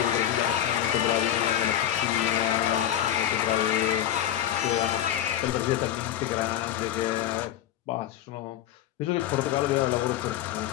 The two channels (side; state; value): right; quieter; 11.4 dB